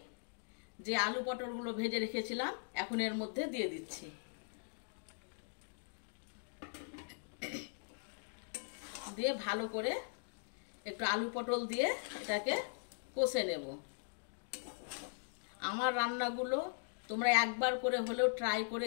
যে আলু পটলগুলো ভেজে রেখেছিলাম এখন এর মধ্যে দিয়ে দিচ্ছি। দিয়ে ভালো করে একটু আলু পটল দিয়ে এটাকে কষে নেব। আমার রান্নাগুলো তোমরা একবার করে হলেও ট্রাই করে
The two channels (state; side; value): silent; right; digital silence